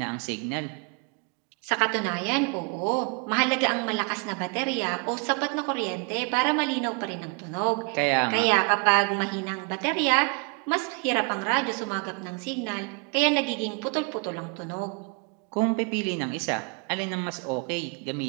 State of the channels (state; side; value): quieter; left; 33.2 dB